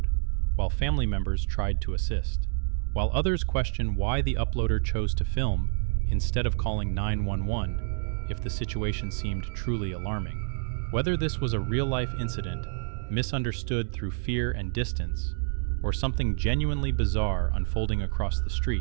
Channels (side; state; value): left; silent; digital silence